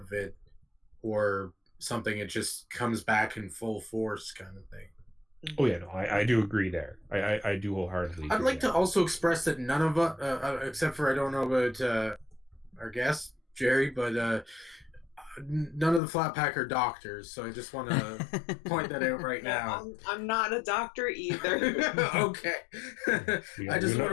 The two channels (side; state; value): right; drops out; at 16.0 s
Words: of it or something, it just comes back in full force, kind of thing. Oh yeah, no, I do agree there. I do wholeheartedly agree. I'd like to also express that none of us, except for I don't know about our guest Geri, but none of the Flat Pack are doctors, so I just want to point that out right now. I'm not a doctor either. Okay. I just want